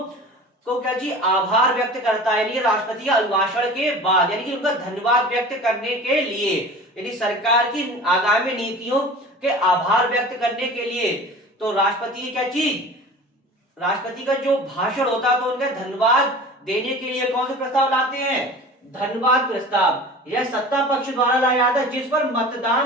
को क्या जी आभार व्यक्त करता है, यानी राष्ट्रपति के अभिभाषण के बाद, यानी कि उनका धन्यवाद व्यक्त करने के लिए, यानी सरकार की आगामी नीतियों के आभार व्यक्त करने के लिए। तो राष्ट्रपति की क्या चीज, राष्ट्रपति का जो भाषण होता है तो उनका धन्यवाद देने के लिए कौन से प्रस्ताव लाते हैं, धन्यवाद प्रस्ताव। यह सत्ता पक्ष द्वारा लाया जाता है जिस पर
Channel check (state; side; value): normal; both; correlation 0.39